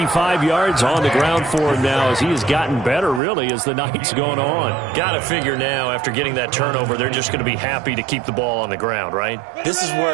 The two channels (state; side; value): drops out; left; at 3.2 s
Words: yards on the ground for him now as he has gotten better, really, as the night's gone on. Got to figure now, after getting that turnover, they're just going to be happy to keep the ball on the ground, right? This is